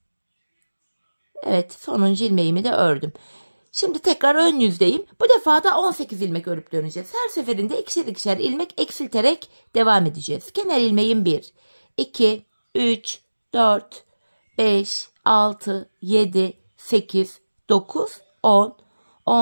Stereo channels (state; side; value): inverted; both; correlation -1.00